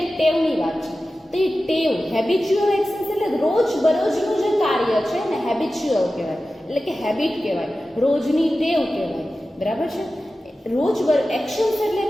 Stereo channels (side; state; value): both; normal; correlation 0.94